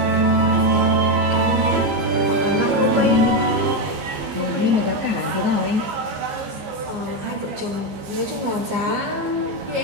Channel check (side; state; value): left; late; 14 ms